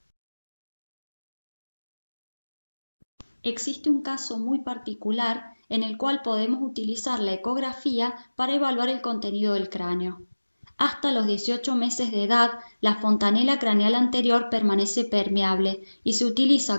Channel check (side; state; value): both; inverted; correlation -1.00